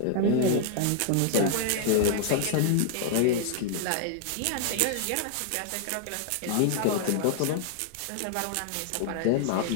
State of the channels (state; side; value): different; both; correlation 0.00